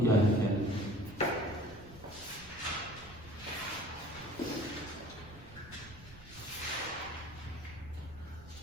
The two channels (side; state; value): right; noise; rumble, 20 dB below the sound